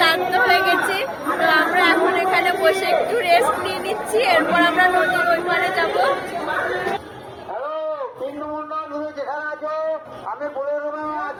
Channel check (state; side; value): identical; both; correlation 1.00